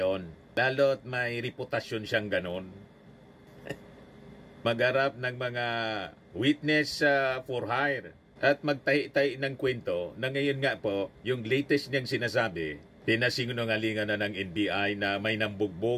Lalo't may reputasyon siyang ganon. Magharap ng mga witness for hire at magtahi-tahi ng kwento na ngayon nga po, yung latest niyang sinasabi, pinasinungalingan na ng NBI na may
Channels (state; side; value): identical; both; correlation 1.00